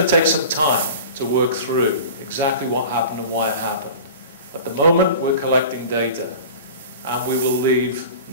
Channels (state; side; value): inverted; both; correlation -0.38